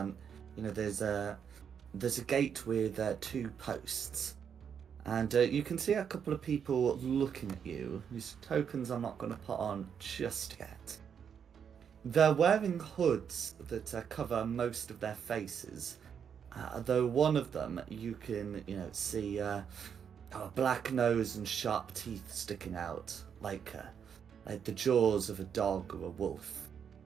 there's a gate with 2 posts, and you can see a couple of people looking at you. Whose tokens I'm not going to put on just yet. They're wearing hoods that cover most of their faces. Though one of them you can, see a black nose and sharp teeth sticking out, like the jaws of a dog or a wolf.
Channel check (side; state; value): left; quieter; 7.6 dB